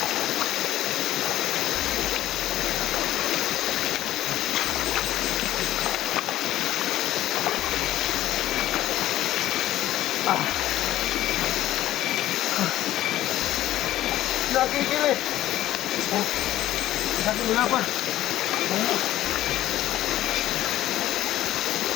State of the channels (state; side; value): quieter; right; 14.2 dB